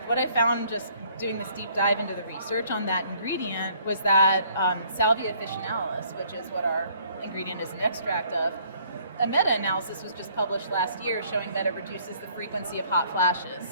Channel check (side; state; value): both; inverted; correlation -0.61